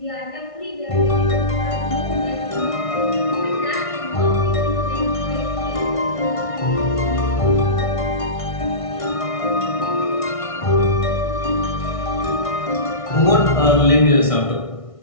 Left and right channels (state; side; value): late; right; 1.6 ms